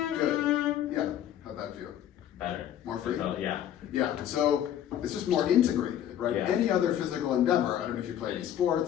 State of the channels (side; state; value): right; quieter; 10.6 dB